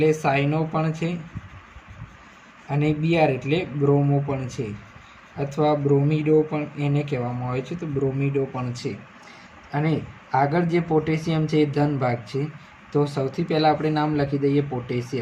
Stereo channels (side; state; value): both; identical; correlation 1.00